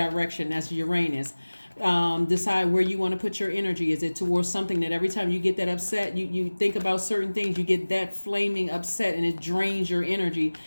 That's Uranus. Decide where you want to put your energy. Is it towards something that every time you get that upset, you think about certain things, you get that flaming upset and it drains your energy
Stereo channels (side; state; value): both; inverted; correlation -1.00